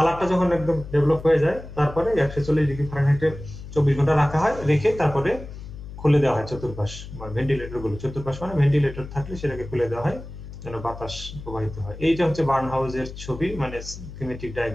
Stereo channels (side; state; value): left; noise; hum, 13 dB below the sound